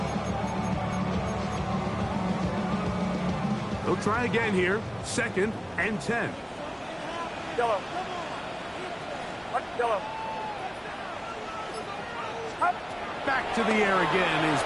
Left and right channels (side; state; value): both; identical; correlation 1.00